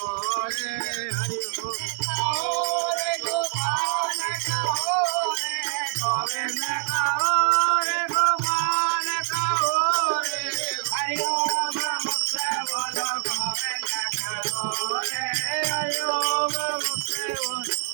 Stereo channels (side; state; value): left; silent; digital silence